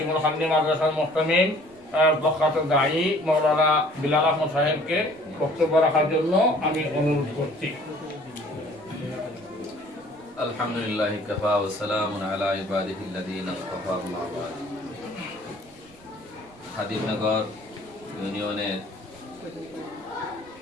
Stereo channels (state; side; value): noise; right; rumble, 28 dB below the sound